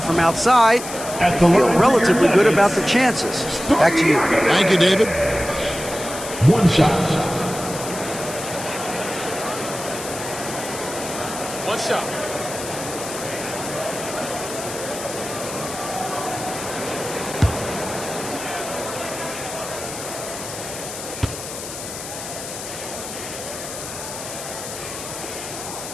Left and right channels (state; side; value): noise; left; hiss, 9 dB below the sound